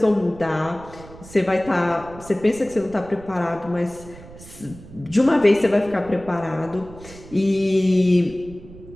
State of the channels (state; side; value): noise; right; rumble, 18 dB below the sound